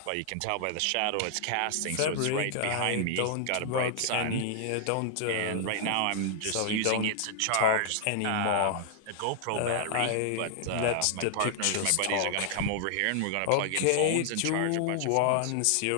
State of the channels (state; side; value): different; both; correlation 0.00